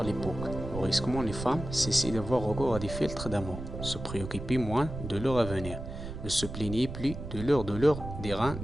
l'époque. Brusquement, les femmes cessaient d'avoir recours à des filtres d'amour, se préoccupaient moins de leur avenir, ne se plaignaient plus de leur douleur des reins,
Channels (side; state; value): right; noise; rumble, 8 dB below the sound